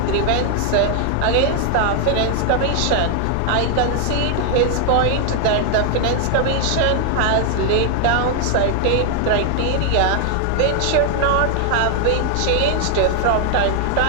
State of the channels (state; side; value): different; both; correlation 0.00